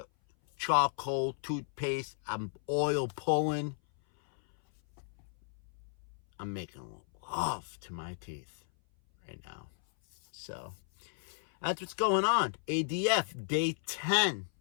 charcoal toothpaste, I'm oil pulling. I'm making love to my teeth right now. So that's what's going on. ADF day 10.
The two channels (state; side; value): silent; right; 55 dB below the other